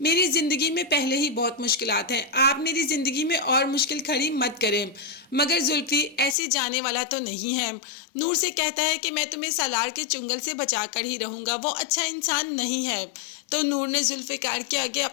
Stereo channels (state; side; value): drops out; right; at 6.4 s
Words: ज़िंदगी में पहले ही बहुत मुश्किलात हैं, आप मेरी ज़िंदगी में और मुश्किल खड़ी मत करें। मगर जुल्फी ऐसे जाने वाला तो नहीं है। नूर से कहता है कि मैं तुम्हें सालार के चुंगल से बचा कर ही रहूँगा, वो अच्छा इंसान नहीं है। तो नूर ने जुल्फिकार के आगे